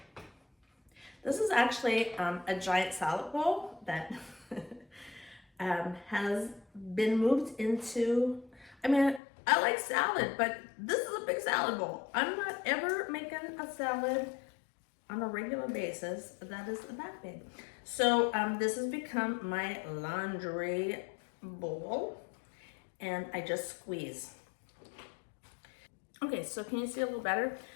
This is actually a giant salad bowl that has been moved into, I like salad, but this is a big salad bowl. I'm not ever making a salad on a regular basis that is that big. So this has become my laundry bowl, and I just squeeze. Okay, so can you see a little better?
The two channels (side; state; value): right; drops out; at 9.2 s